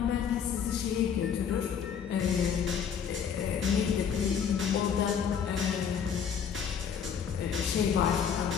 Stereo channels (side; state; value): right; quieter; 7.6 dB